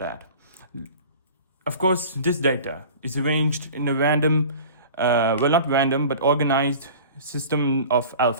Of course, this data is arranged in a random, not random, but organized system of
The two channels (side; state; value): both; inverted; correlation -0.41